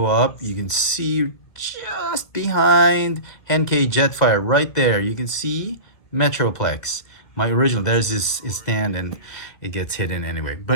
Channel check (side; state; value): right; late; 2.0 ms